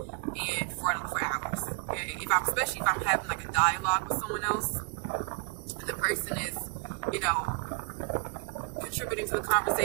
and for hours. Okay, especially if I'm having like a dialogue with someone else and the person is, contributing to the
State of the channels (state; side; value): quieter; left; 34.9 dB